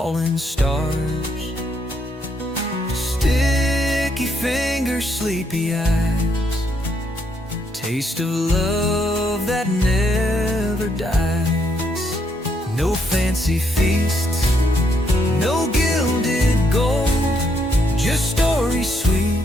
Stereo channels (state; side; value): normal; both; correlation 0.74